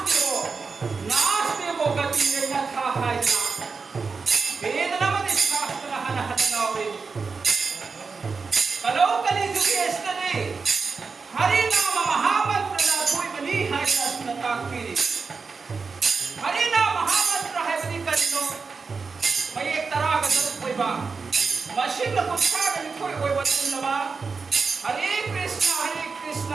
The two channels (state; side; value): quieter; left; 4.8 dB